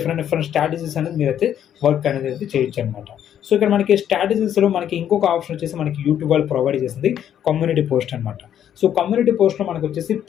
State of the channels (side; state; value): right; quieter; 10.0 dB